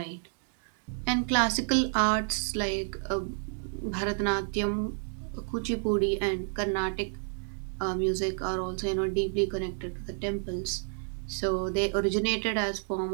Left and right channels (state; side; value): silent; left; 58 dB below the other